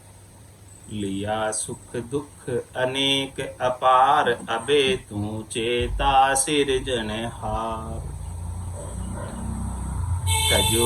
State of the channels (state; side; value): identical; both; correlation 1.00